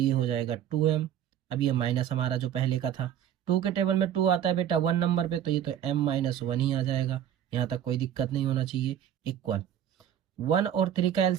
हो जाएगा 2m। अब ये माइनस हमारा जो पहले का था, 2 के टेबल में 2 आता है बेटा 1 नंबर पे तो ये तो m माइनस 1 ही आ जाएगा, यहाँ तक कोई दिक्कत नहीं होना चाहिए इक्वल 1 और 3 का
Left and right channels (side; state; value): left; quieter; 10.2 dB